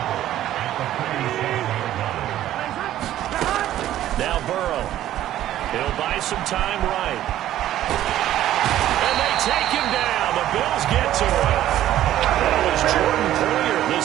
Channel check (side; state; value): left; quieter; 12.9 dB